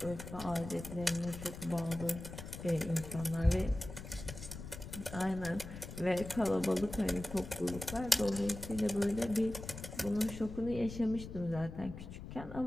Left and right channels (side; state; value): left; noise; rumble, 11 dB below the sound